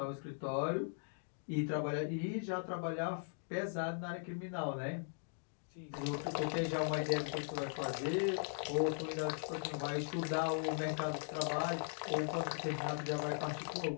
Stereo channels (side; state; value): right; silent; digital silence